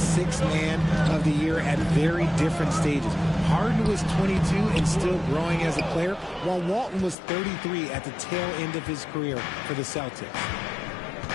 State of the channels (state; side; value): drops out; right; at 7.2 s